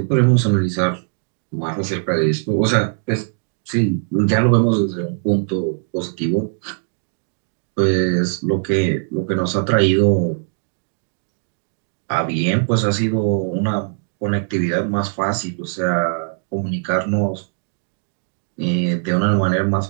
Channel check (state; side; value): silent; left; digital silence